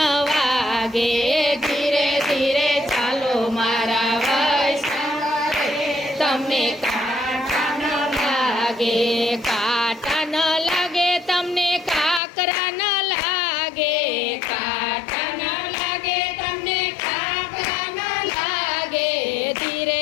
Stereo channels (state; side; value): drops out; right; at 12.2 s